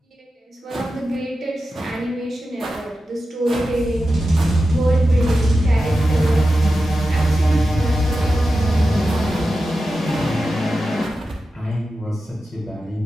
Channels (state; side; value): normal; both; correlation 0.92